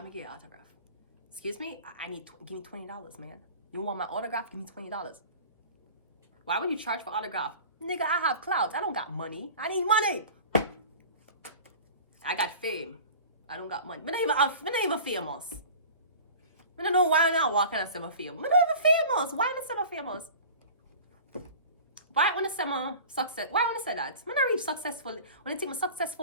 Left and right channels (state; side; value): inverted; both; correlation -0.40